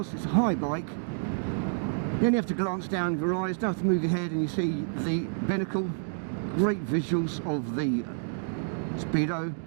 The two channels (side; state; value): left; silent; digital silence